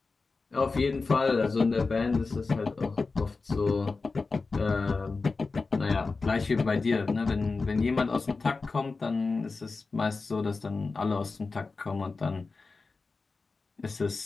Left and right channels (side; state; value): right; quieter; 4.1 dB